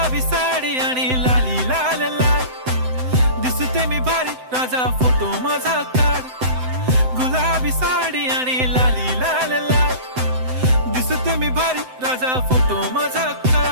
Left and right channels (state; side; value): late; left; 7.8 ms